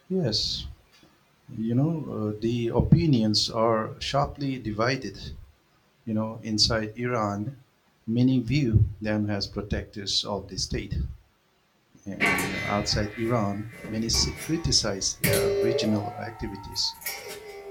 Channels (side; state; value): both; identical; correlation 1.00